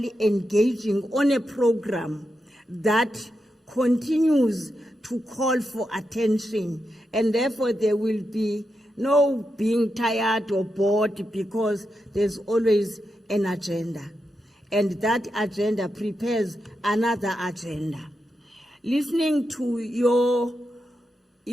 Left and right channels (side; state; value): both; normal; correlation 0.87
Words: engaging on a program that continues to call for attention, and therefore there will be no being tired or bored because there's always an agenda. And that agenda prepares another agenda. Listening to your